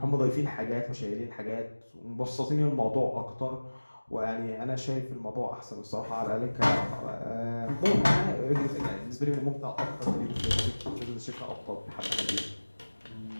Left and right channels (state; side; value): inverted; both; correlation -1.00